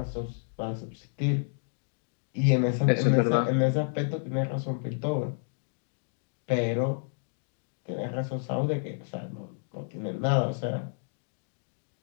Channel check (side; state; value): right; silent; digital silence